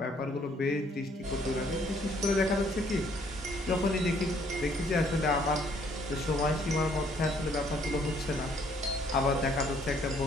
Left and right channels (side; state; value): both; normal; correlation 0.64